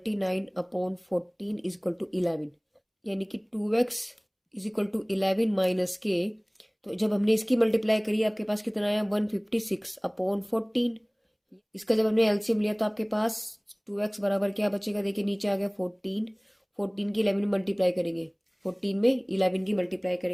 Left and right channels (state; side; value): identical; both; correlation 1.00